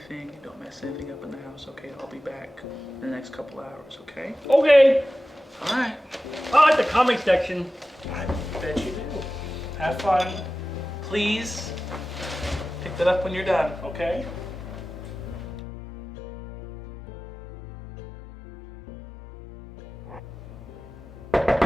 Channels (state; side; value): normal; both; correlation 0.95